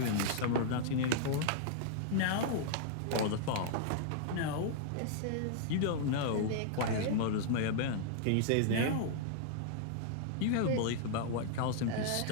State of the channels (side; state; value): both; different; correlation -0.01